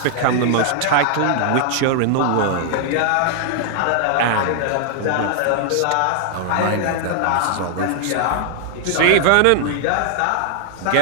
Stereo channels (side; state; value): both; different; correlation 0.00